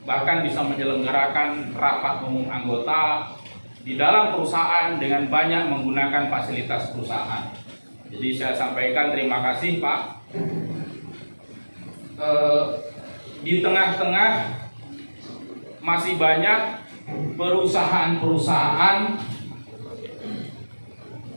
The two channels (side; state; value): both; inverted; correlation -1.00